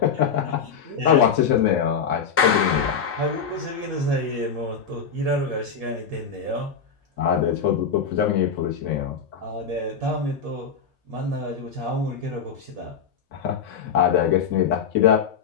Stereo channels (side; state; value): right; quieter; 6.4 dB